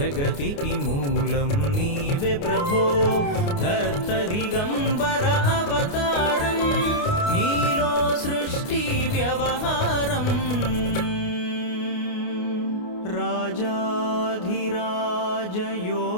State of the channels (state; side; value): late; right; 29 ms